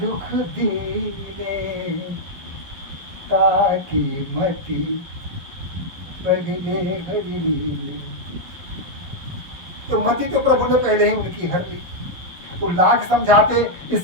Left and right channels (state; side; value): late; left; 11 ms